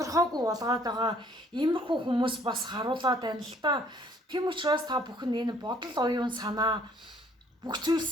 болгоод байгаа иймэрхүү хүмүүс бас харуулад байна л та. Тийм учраас та бүхэн энэ бодол оюун санаа бүх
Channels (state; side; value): normal; both; correlation 0.60